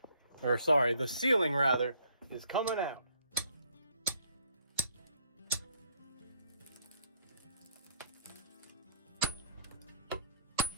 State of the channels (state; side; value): inverted; both; correlation -0.65